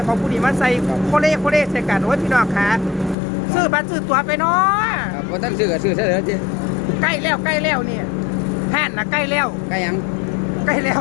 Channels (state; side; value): drops out; right; at 3.2 s